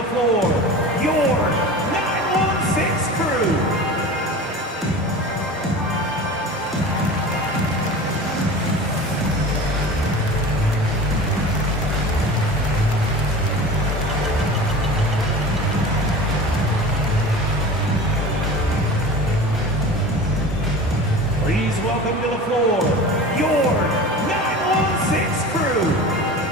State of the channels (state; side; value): normal; both; correlation 0.35